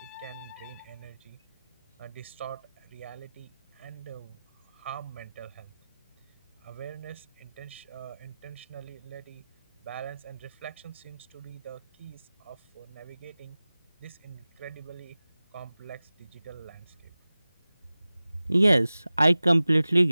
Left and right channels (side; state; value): both; inverted; correlation -0.97